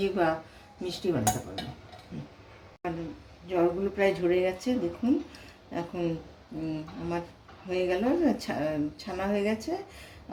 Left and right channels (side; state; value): both; identical; correlation 1.00